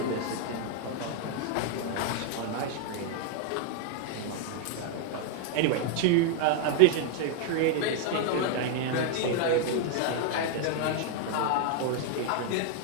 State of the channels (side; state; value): both; different; correlation 0.00